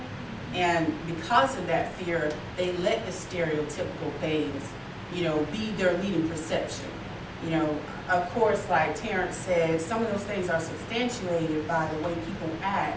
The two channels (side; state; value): both; identical; correlation 1.00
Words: And because of that fear, they let the stereotypical things, you know, be their leading perception. You know, of course, like Terrence said, some of those things are substantiated by the way people